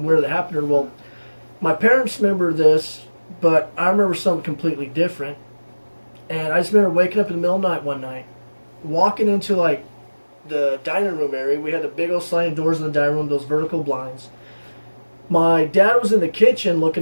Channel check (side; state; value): both; inverted; correlation -1.00